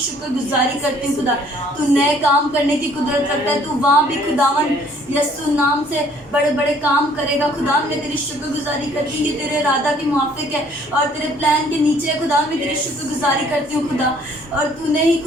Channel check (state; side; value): normal; both; correlation 0.59